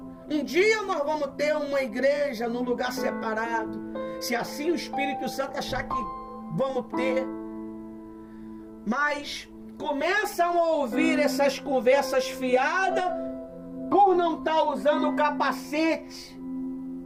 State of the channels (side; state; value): both; identical; correlation 1.00